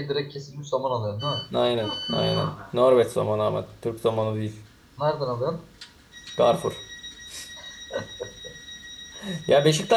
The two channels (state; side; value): identical; both; correlation 1.00